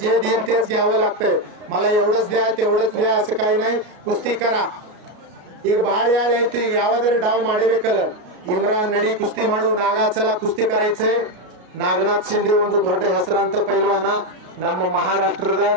जे देईल तेच घ्यावं लागतंय. मला एवढंच द्या तेवढंच द्या असं काही नाही. कुस्ती करा. ಈಗ ಬಹಳ ಯಾಳೆ ಐತಿ. ಈಗ ಯಾವ್ದಾರ ಡಾವ್ ಮಾಡಬೇಕಲ್ಲ. ಇಮ್ರಾನ್ ನಡಿ ಕುಸ್ತಿ ಮಾಡು. ನಾಗಾಚಲ ಕುಸ್ತಿ ಕರಾಯ್ಚೆ. ನಾಗನಾಥ್ ಶಿಂದೆ ಒಂದು ದೊಡ್ಡ ಹೆಸರಾಂತ ಪೈಲ್ವಾನ ನಮ್ಮ ಮಹಾರಾಷ್ಟ್ರದ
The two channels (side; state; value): left; late; 33 ms